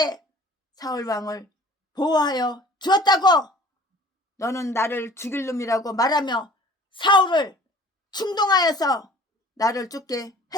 사울왕을 보호하여 주었다고. 너는 나를 죽일 놈이라고 말하며 사울을 충동하여서 나를 죽게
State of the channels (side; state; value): both; normal; correlation 0.49